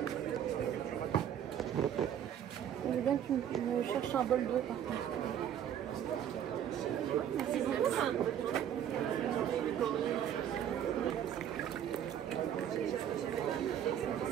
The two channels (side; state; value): left; quieter; 9.8 dB